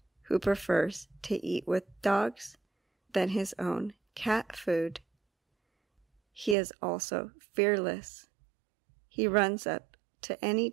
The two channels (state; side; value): drops out; left; at 6.6 s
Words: who prefers to eat with dogs than his own cat food. He is also fearless. He runs up to any